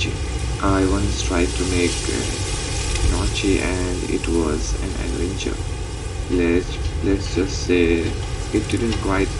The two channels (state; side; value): identical; both; correlation 1.00